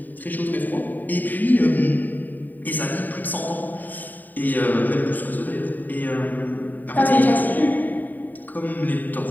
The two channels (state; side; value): late; right; 0.087 ms